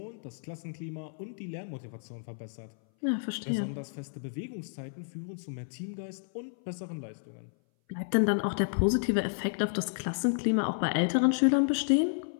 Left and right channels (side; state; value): right; silent; 57 dB below the other